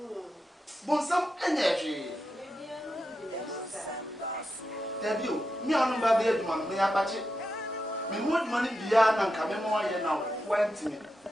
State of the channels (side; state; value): both; normal; correlation 0.87